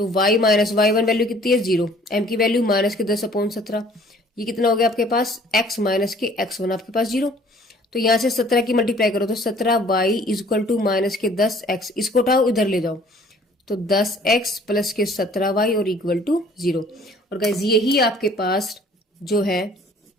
y माइनस y1 वैल्यू कितनी है 0, m की वैल्यू माइनस के 10/17, ये कितना हो गया आपके पास x माइनस के x1 आपके पास 0। तो यहां से 17 की मल्टीप्लाई करो तो 17y is equal to minus के 10x, इसको उठाओ इधर ले जाओ तो 10x प्लस के 17y और इक्वल टू 0। और गाइज यही आपके पास जो है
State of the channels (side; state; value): both; normal; correlation 0.55